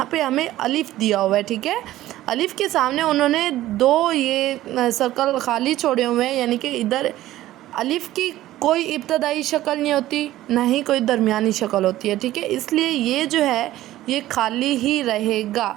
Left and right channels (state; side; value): quieter; left; 14.9 dB